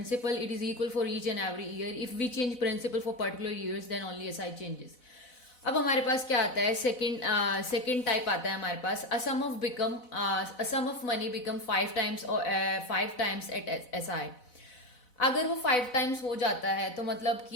it is equal for each and every year. If we change principal for particular years then only SI changes. अब हमारे पास क्या आता है, सेकेंड टाइप आता है हमारे पास, a sum of money become 5 times at SI। अगर वो 5 times हो जाता है तो मतलब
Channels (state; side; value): late; right; 4.0 ms